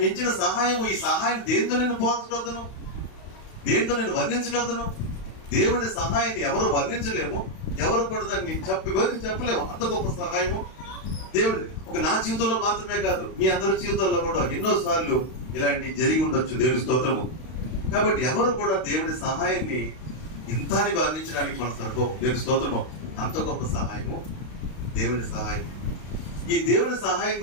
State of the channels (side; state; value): right; late; 32 ms